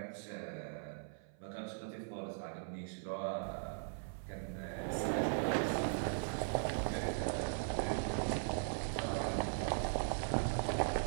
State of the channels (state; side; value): silent; left; 51 dB below the other